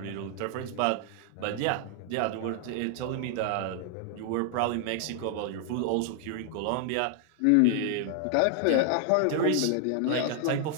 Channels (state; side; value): different; both; correlation 0.00